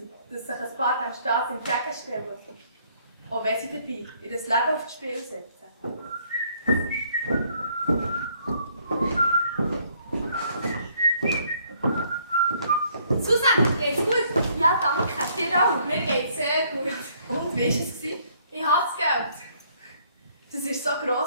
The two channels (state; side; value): inverted; both; correlation -0.65